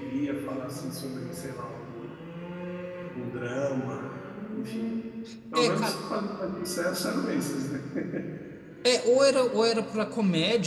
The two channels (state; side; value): identical; both; correlation 1.00